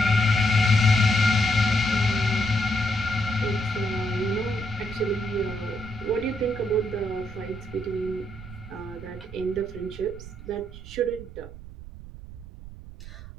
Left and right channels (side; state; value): right; noise; rumble, 14 dB below the sound